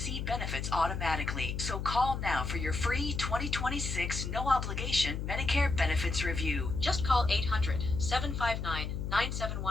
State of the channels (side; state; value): left; noise; hum, 4 dB below the sound